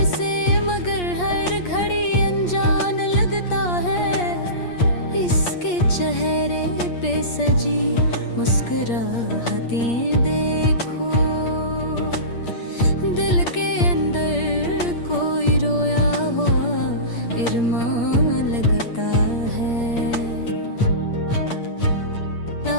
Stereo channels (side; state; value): right; late; 8.5 ms